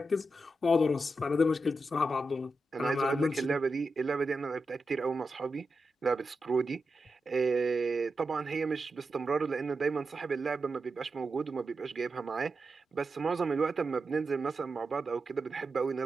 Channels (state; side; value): normal; both; correlation 0.89